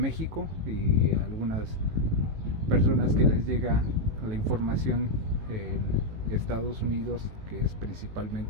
y algunas personas que les llega la información en Estados Unidos, que es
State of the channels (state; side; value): late; left; 18 ms